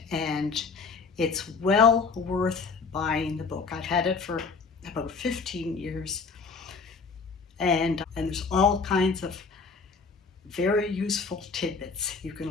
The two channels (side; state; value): right; quieter; 4.8 dB